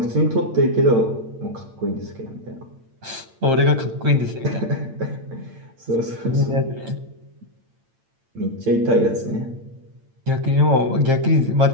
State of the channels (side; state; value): left; late; 8.8 ms